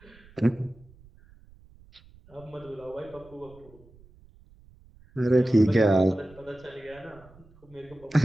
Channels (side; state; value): right; noise; rumble, 26 dB below the sound